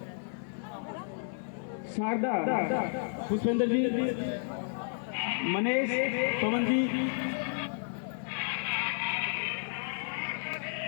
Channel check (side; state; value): right; silent; 56 dB below the other